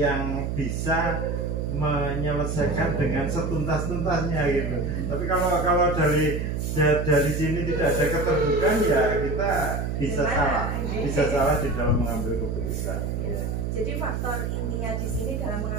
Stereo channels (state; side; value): noise; right; hum, 2 dB below the sound